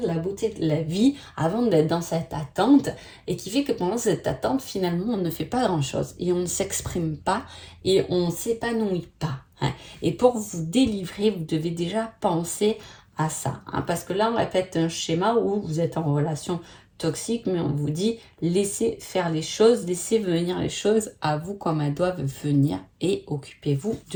la beauté de la vie, avant d'être dans cette attente, et qui fait que pendant cette attente, finalement, on ne fait pas grand-chose, et on ne s'exprime pas, et on ne s'épanouit pas. Hein. Et pour vous délivrer, vous devez déjà penser à ça, hein, parce que là, on répète un schéma où vous êtes en relation toxique, mais on vous dit, laissez faire les choses, laissez venir les choses à vous comme elles doivent venir, et occupez-vous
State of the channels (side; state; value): both; identical; correlation 1.00